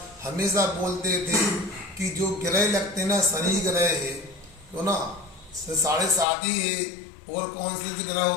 हमेशा बोलते थे कि जो ग्रह लगते ना, शनि ग्रह है तो ना 7.5 ही है, और कौन से ग्रह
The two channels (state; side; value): drops out; right; at 6.2 s